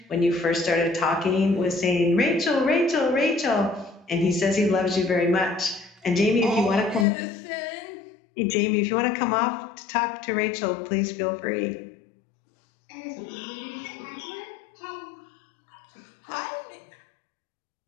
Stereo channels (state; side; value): drops out; right; at 7.1 s